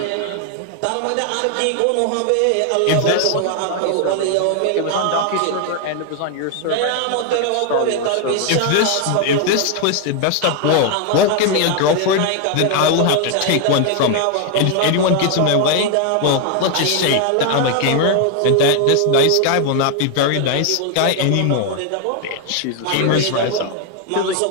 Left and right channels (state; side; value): different; both; correlation 0.01